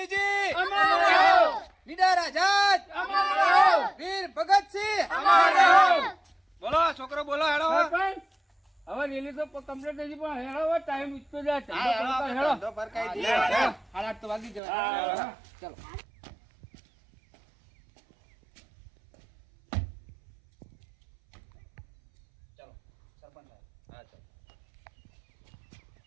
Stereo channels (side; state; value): left; drops out; at 14.6 s